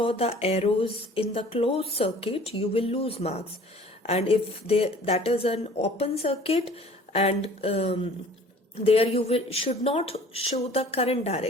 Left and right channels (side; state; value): both; normal; correlation 0.50